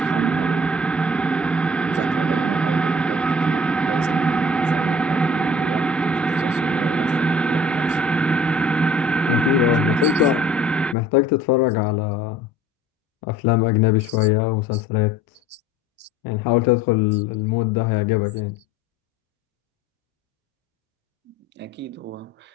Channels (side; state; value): both; normal; correlation 0.50